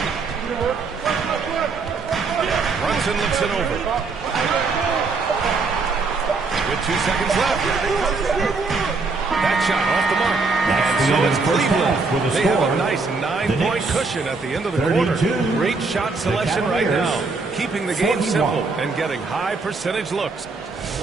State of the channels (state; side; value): quieter; left; 4.1 dB